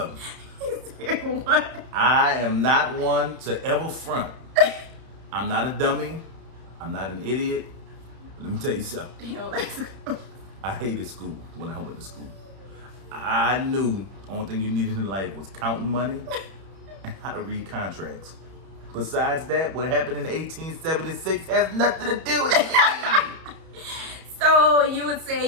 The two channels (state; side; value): late; left; 31 ms